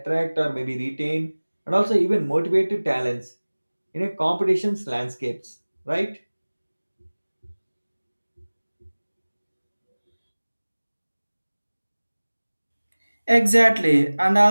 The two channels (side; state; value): both; inverted; correlation -1.00